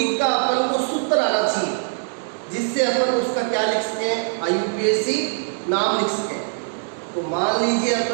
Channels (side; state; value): left; silent; digital silence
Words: का अपन को सूत्र आना चाहिए, जिससे अपन उसका क्या लिख सकें, IUPAC नाम लिख सकें। तो मान लीजिए